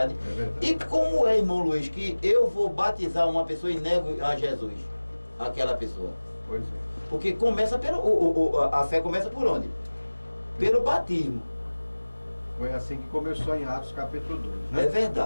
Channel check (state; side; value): inverted; both; correlation -1.00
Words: É verdade. E como é, irmão Luiz, que eu vou batizar uma pessoa e nego a Jesus, aquela pessoa? Pois é. Porque começa a fé começa por onde? Pelo batismo. Foi assim que começou em Atos capítulo 2, né? É